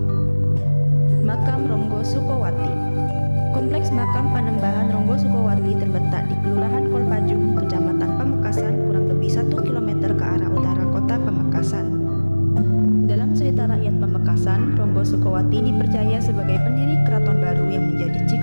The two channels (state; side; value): inverted; both; correlation -1.00